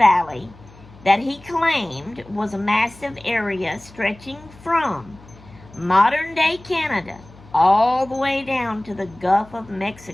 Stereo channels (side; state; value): left; noise; hum, 23 dB below the sound